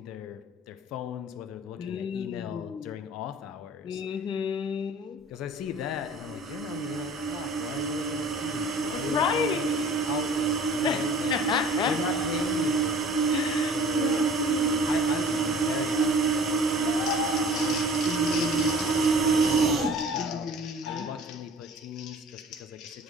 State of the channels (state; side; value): normal; both; correlation 0.46